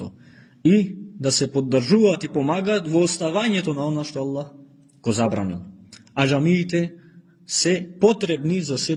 И да се поддржуваат и помагаат во оставањето на она што Аллах го забранил. А џамиите се потребни за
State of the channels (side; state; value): both; identical; correlation 1.00